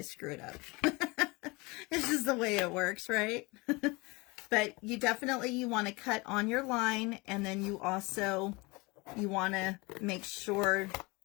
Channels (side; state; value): right; quieter; 25.5 dB